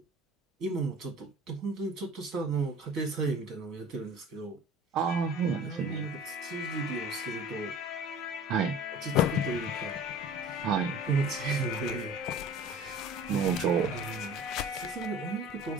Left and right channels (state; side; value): normal; both; correlation 0.43